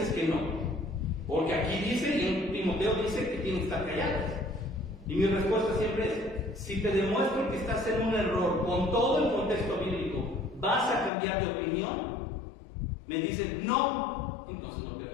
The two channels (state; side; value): drops out; right; at 11.1 s